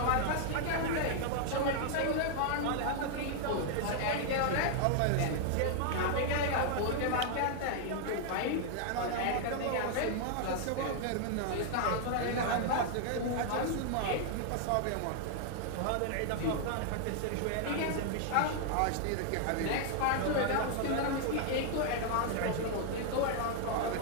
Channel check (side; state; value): both; different; correlation 0.00